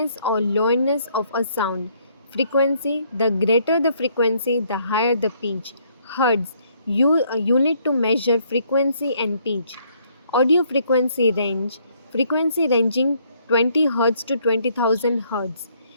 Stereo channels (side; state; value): both; inverted; correlation -0.67